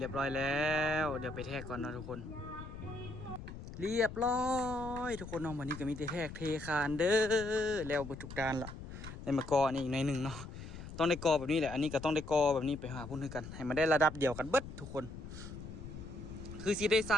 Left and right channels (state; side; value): noise; left; rumble, 11 dB below the sound